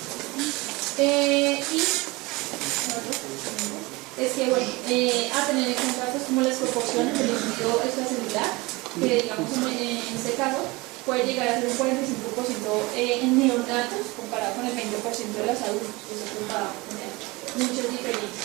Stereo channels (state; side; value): quieter; left; 23.4 dB